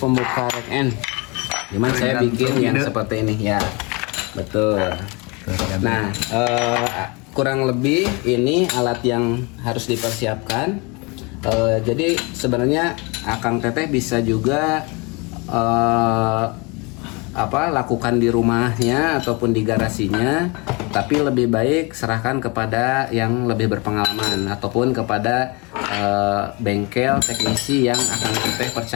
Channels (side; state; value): right; quieter; 28.6 dB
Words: rack end. Cuman saya bikin yang seperti ini ya. Betul. Nah, kurang lebih ini alat yang harus dipersiapkan. Jadi sebenarnya Akang Teteh bisa juga lakukan di rumahnya ataupun di garasinya, tapi lebih baik serahkan kepada yang lebih berpengalaman ataupun kepada bengkel teknisi yang Akang Teteh